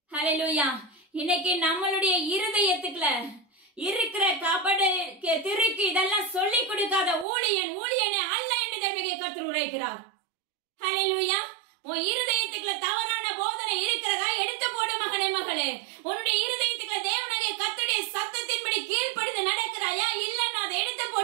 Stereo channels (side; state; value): left; drops out; at 7.2 s